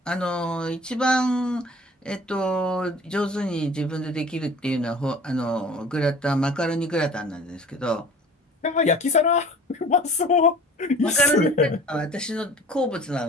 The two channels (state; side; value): normal; both; correlation 0.45